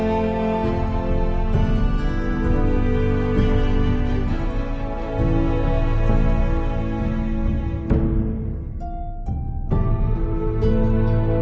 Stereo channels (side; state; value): both; identical; correlation 1.00